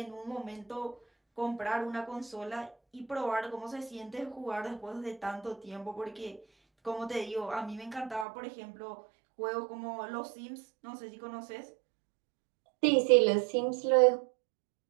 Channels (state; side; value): drops out; left; at 8.2 s